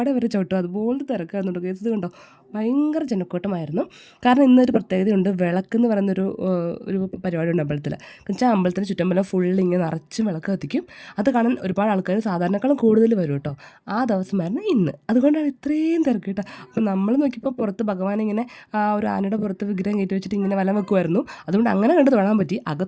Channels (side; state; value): both; identical; correlation 1.00